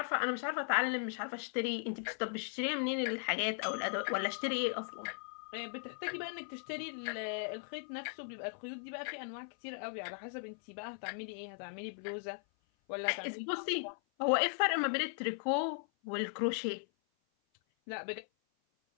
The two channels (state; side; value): silent; right; 53 dB below the other